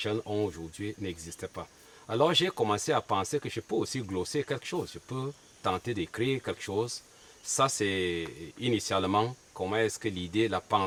ont aujourd'hui n'existaient pas. Alors j'ai commencé à penser que je peux aussi glosser quelque chose. Je peux tenter d'écrire quelque chose. Ça, c'est initialement comment est-ce que l'idée, la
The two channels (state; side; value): identical; both; correlation 1.00